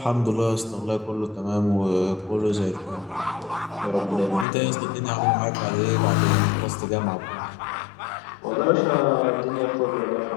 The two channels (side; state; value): right; drops out; at 4.5 s